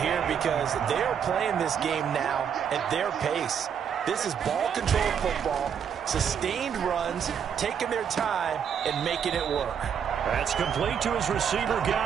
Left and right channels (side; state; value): left; quieter; 7.8 dB